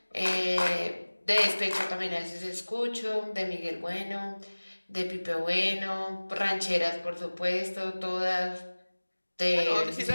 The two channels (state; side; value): inverted; both; correlation -1.00